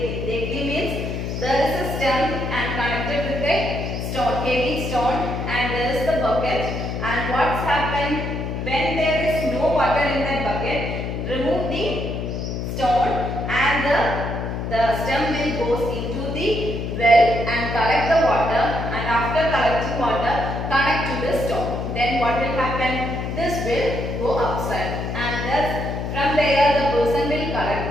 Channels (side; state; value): left; noise; hum, 4 dB below the sound